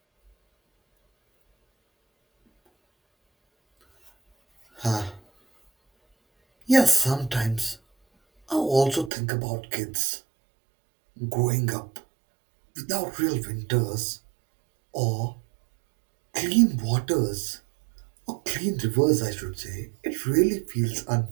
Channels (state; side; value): drops out; left; at 9.1 s